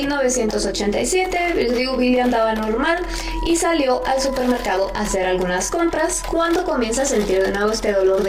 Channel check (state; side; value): identical; both; correlation 1.00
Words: les digo, Bill andaba normal y salió al supermercado a hacer algunas compras cuando comienza a sentir de nuevo este dolor